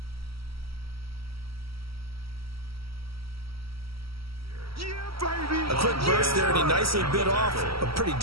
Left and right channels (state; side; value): late; left; 0.75 ms